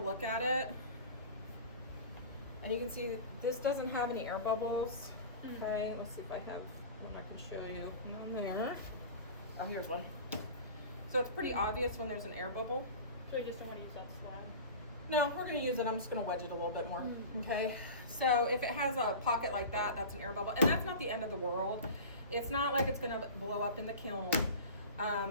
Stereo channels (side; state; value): both; inverted; correlation -0.34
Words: at it and you can see this doesn't have any air bubbles. Okay, let's see if I have one I can show you. None there. Oh, here's one. So it's pretty obvious when there's an air bubble. So you just don't want to use that slab? No, we're gonna use it. I'm just gonna wedge it a little bit more. Okay, so if it has a pocket like that, that's an air bubble. And that's not the end of the world. It's not like it's gonna blow up in the kiln.